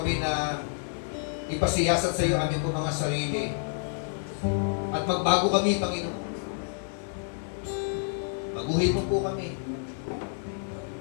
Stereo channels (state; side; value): silent; right; digital silence